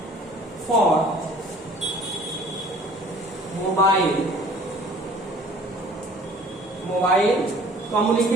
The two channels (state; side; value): normal; both; correlation 0.51